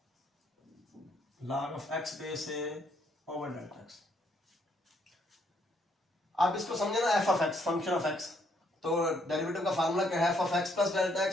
log of x base a over delta x। आप इसको समझे ना, f of x function of x, तो डेरिवेटिव का फार्मूला क्या है f of x plus delta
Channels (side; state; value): both; normal; correlation 0.70